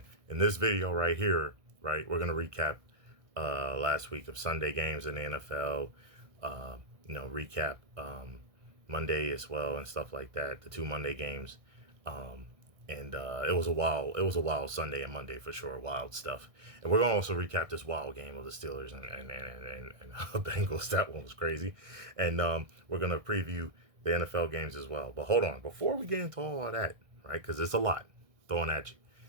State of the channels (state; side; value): late; left; 1.6 ms